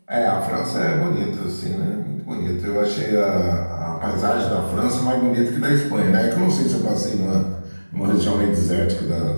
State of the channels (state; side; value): inverted; both; correlation -1.00